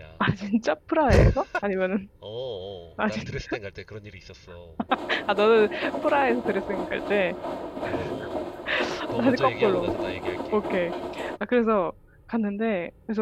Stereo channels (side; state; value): both; identical; correlation 1.00